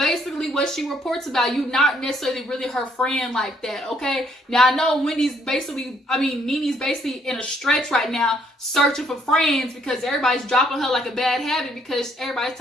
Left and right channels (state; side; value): normal; both; correlation 0.68